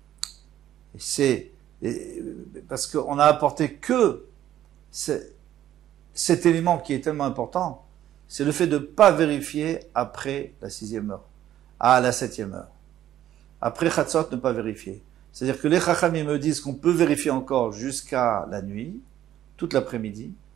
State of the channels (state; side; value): quieter; left; 12.1 dB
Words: c'est parce qu'on a apporté que cet élément qui est tellement important, c'est le fait de ne pas vérifier après la 6e heure, à la 7e heure. Après Chatzot, ne pas vérifier. C'est-à-dire que les Chachamim me disent qu'on peut vérifier encore jusqu'à la nuit, toute l'après-midi,